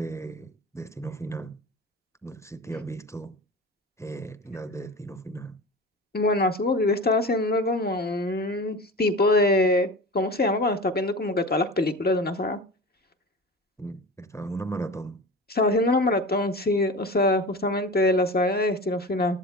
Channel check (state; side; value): normal; both; correlation 0.33